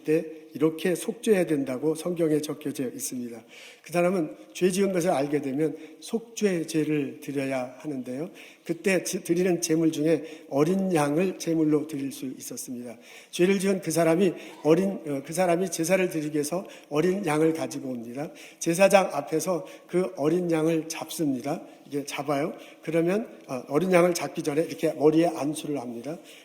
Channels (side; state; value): both; identical; correlation 1.00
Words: 때 이렇게 속죄해야 된다고 성경에 적혀져 있습니다. 그 사람은 죄 지은 것을 알게 되면 속죄제를 드려야 하는데요. 그때 드리는 제물 중에 어린 양을 제물로 드릴 수 있었습니다. 죄를 지은 그 사람이 제사를 드리기 위해서 어린 양을 가지고 옵니다. 제사장 앞에서 그 어린 양을 잡습니다. 이게 잡아요. 그러면 어린 양을 잡기 전에 이렇게 머리에 안수를 합니다.